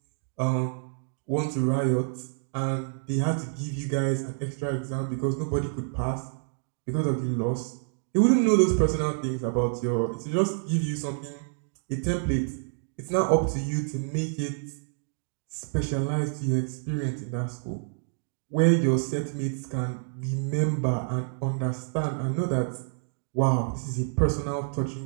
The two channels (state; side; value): silent; left; digital silence